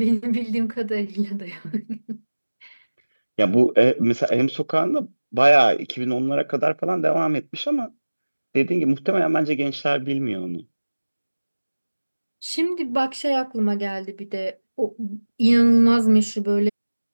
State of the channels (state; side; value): inverted; both; correlation -1.00